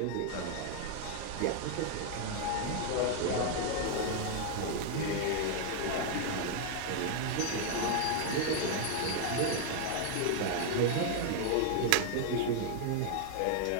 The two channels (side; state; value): both; different; correlation 0.00